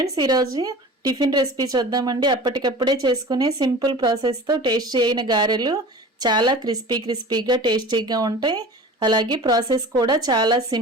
ఈరోజు టిఫిన్ రెసిపీ చూద్దామండి. అప్పటికప్పుడే చేసుకునే సింపుల్ ప్రాసెస్తో టేస్టీ అయిన గారెలు చాలా క్రిస్పీగా టేస్టీగా ఉంటాయి. అలాగే ప్రాసెస్ కూడా చాలా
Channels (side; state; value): both; normal; correlation 0.38